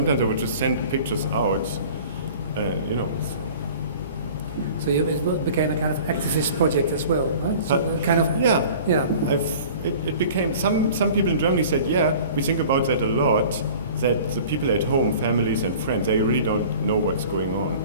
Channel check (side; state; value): both; inverted; correlation -0.44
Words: I would just send pictures out, you know. So it became a kind of activist project as well, right? So kind of. Yeah. It became, some people in Germany said, we think about that a lot, that the people at home, families and friends, they really don't know what's going on